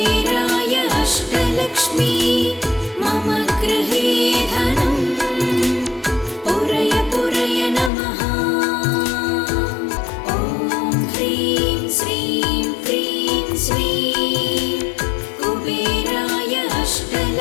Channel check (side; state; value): right; drops out; at 7.9 s